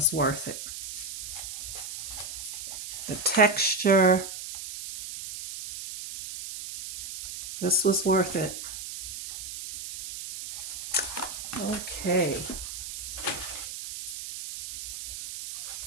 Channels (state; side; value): noise; right; hiss, 8 dB below the sound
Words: worth it. The texture, this was worth it. Okay.